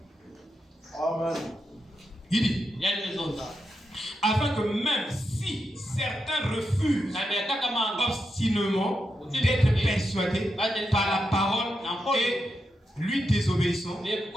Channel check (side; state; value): both; normal; correlation 0.86